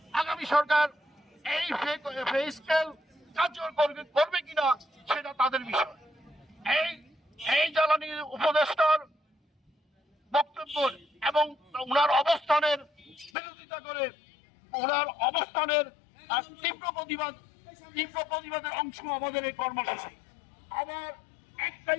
আগামী সরকার এই পে স্কেল কার্যকর করবে কিনা সেটা তাদের বিষয়। এই জ্বালানি উপদেষ্টার বক্তব্য এবং ওনার অবস্থানের বিরোধিতা করে ওনার অবস্থানের তীব্র প্রতিবাদের অংশ আমাদের এই কর্মসূচি। আমার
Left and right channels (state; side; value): drops out; right; at 13.3 s